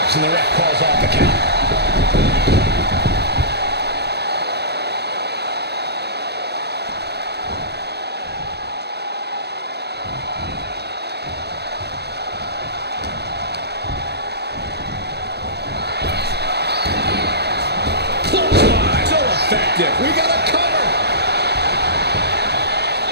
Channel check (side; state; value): left; late; 0.48 ms